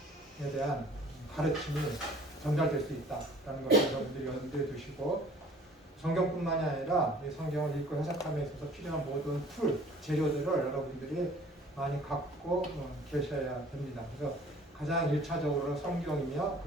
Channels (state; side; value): normal; both; correlation 0.51